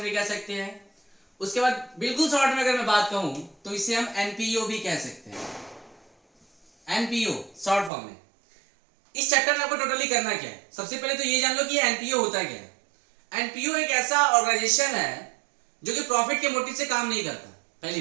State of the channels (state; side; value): drops out; left; at 7.9 s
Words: भी कह सकते हैं। उसके बाद बिल्कुल शॉर्ट में अगर मैं बात कहूं तो इसे हम एनपीओ भी कह सकते हैं। एनपीओ शॉर्ट फॉर्म में। इस चैप्टर में आपको टोटली करना क्या है, सबसे पहले तो ये जान लो कि एनपीओ होता क्या है। एनपीओ एक ऐसा ऑर्गेनाइजेशन है जो कि प्रॉफिट के मोटिव से काम नहीं करता। पहली